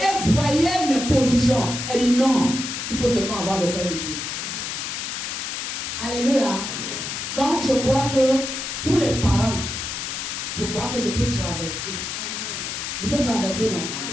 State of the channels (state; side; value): noise; left; hiss, 4 dB below the sound